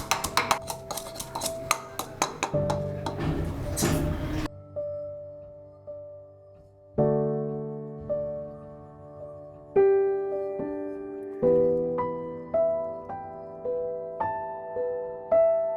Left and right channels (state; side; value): identical; both; correlation 1.00